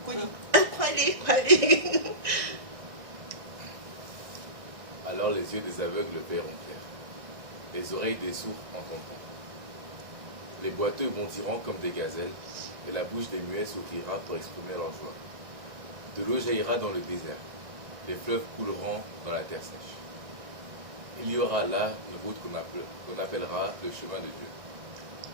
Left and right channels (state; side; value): late; left; 1.6 ms